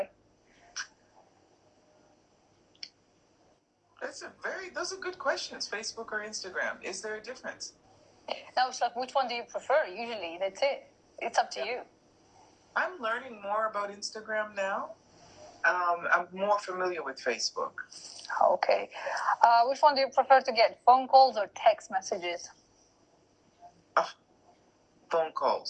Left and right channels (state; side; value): identical; both; correlation 1.00